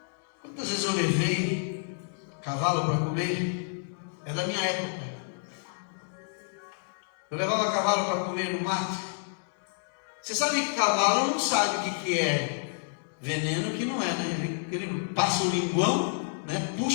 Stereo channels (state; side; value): silent; right; digital silence